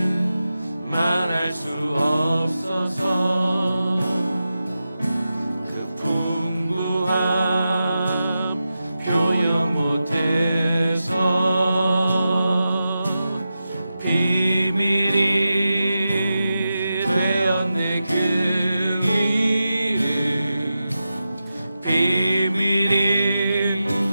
말할 수 없어서 그 풍부함 표현 못해서 비밀이 되었네. 그 이름 비밀이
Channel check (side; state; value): both; inverted; correlation -0.91